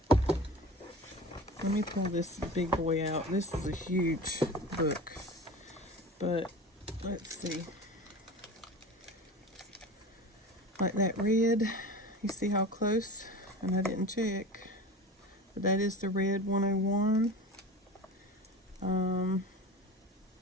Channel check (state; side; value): normal; both; correlation 0.34